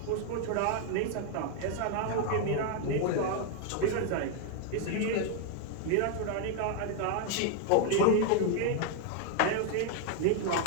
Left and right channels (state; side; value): different; both; correlation 0.00